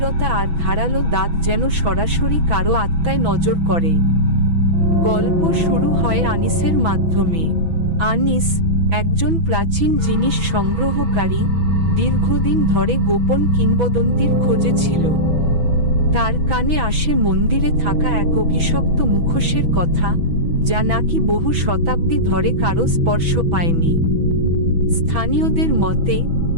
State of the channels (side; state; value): left; late; 6.1 ms